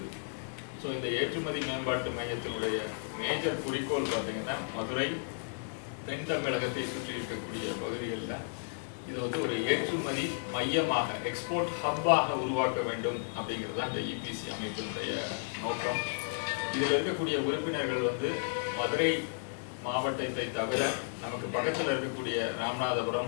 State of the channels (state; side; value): silent; right; digital silence